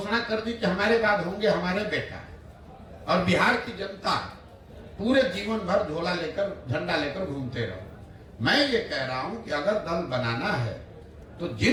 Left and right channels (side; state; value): both; identical; correlation 1.00